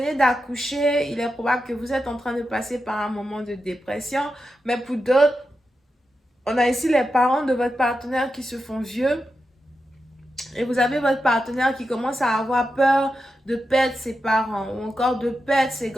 d'accoucher, il est probable que vous êtes en train de passer par un moment de dépression. Mais pour d'autres, on a ici les parents de votre partenaire qui se font vieux. Et vous avez votre partenaire qui commence à avoir peur de perdre ses parents ou encore de perdre ses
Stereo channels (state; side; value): normal; both; correlation 0.89